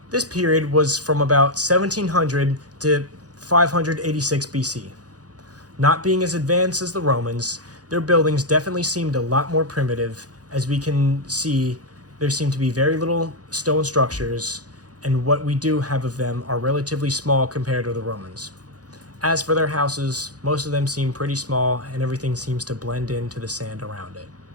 This period was from about 1700 to 586 BC. Not being as advanced as the Romans, their buildings definitely seemed a lot more primitive. As we can see, there seem to be very little stone structures, and what we do have of them are relatively small compared to the Romans. As for their houses, most of them seem pretty small, and everything seems to blend into the sand around it.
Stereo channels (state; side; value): late; left; 0.68 ms